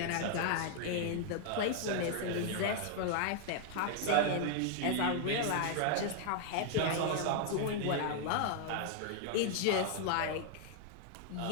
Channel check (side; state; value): both; different; correlation 0.00